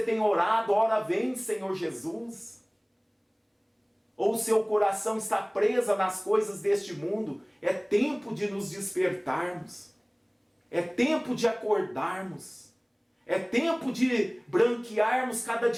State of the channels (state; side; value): identical; both; correlation 1.00